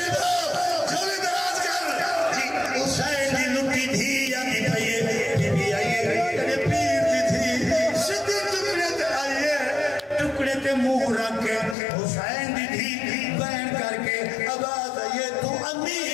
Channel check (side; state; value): right; drops out; at 11.8 s